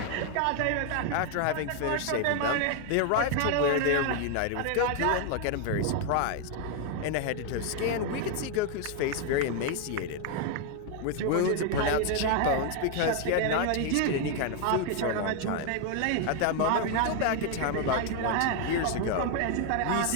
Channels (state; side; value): different; both; correlation 0.01